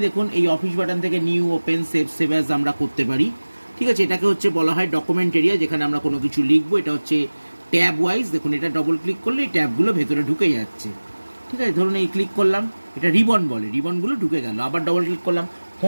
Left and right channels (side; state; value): both; inverted; correlation -1.00